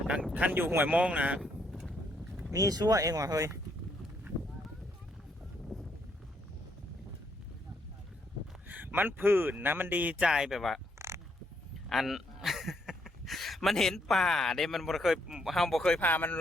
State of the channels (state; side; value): normal; both; correlation 0.73